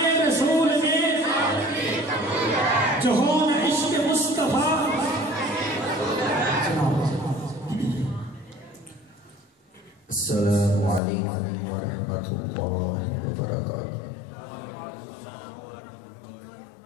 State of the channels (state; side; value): drops out; right; at 11.0 s